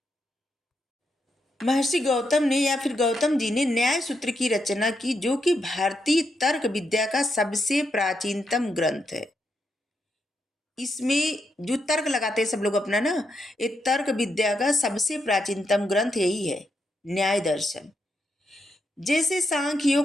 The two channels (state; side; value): normal; both; correlation 0.82